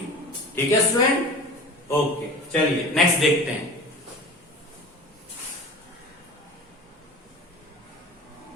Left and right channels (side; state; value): both; normal; correlation 0.36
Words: ठीक है स्टूडेंट, ओके चलिए नेक्स्ट देखते हैं।